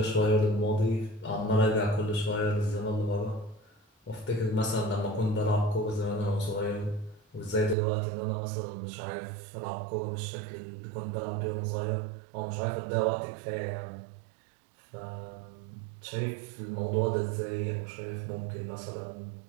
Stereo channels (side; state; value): left; drops out; at 7.8 s